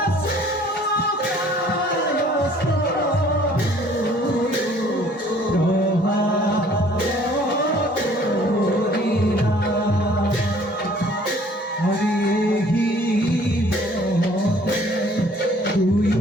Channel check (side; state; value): both; normal; correlation 0.56